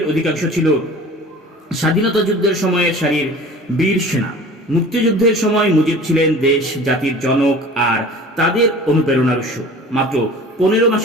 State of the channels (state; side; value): normal; both; correlation 0.42